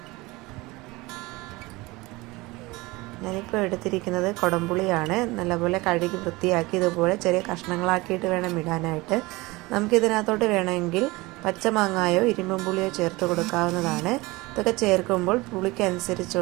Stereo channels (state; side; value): quieter; left; 22.1 dB